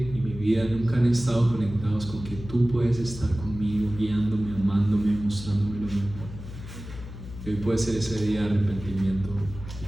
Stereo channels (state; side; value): noise; left; hum, 12 dB below the sound